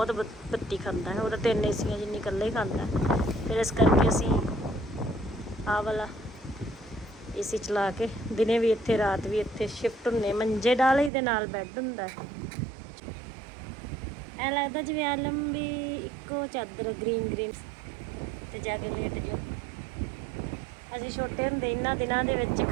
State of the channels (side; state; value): left; drops out; at 11.1 s